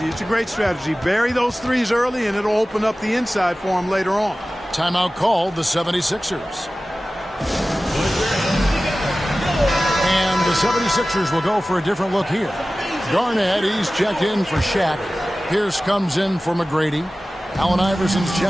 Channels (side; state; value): both; normal; correlation 0.96